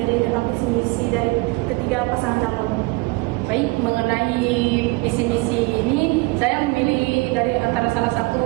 tentang visi-misi dari ketiga pasangan calon. Baik, mengenai visi misi ini, saya memilih dari antara salah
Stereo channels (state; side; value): quieter; left; 24.5 dB